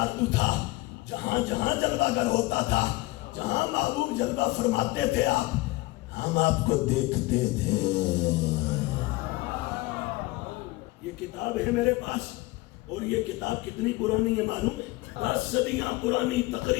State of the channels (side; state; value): right; quieter; 20.8 dB